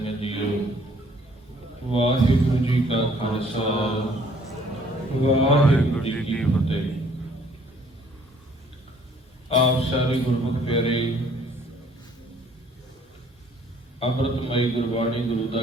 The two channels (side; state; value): both; normal; correlation 0.60